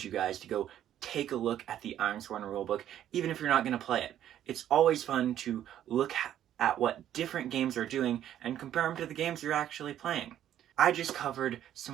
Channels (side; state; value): left; quieter; 11.2 dB